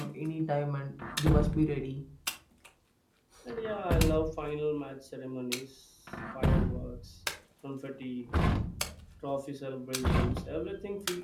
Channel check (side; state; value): both; identical; correlation 1.00